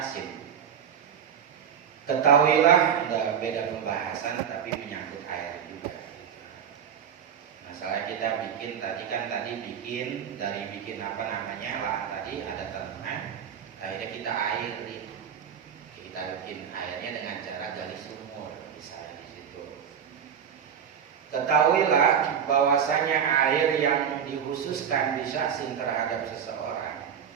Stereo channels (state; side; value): quieter; left; 8.1 dB